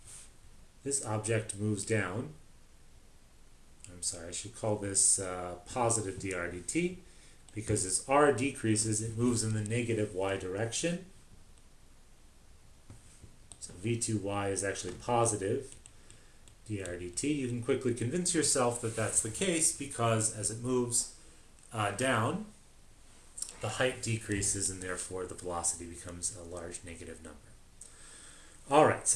this object moves down. I'm sorry, I should call this positive dr dt, because as r decreases, it moves in the negative y direction. So v2y is actually positive dr dt. You can quickly convince yourself that that's the case because as it moves down, the height decreases and therefore the velocity becomes a large negative number. Alright,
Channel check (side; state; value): both; identical; correlation 1.00